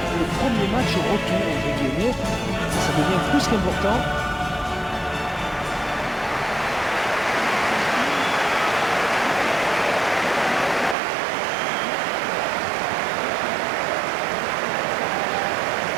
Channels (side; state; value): left; drops out; at 11.0 s